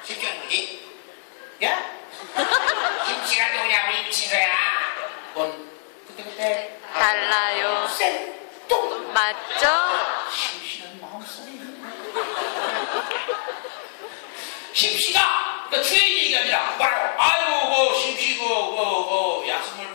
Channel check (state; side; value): silent; right; digital silence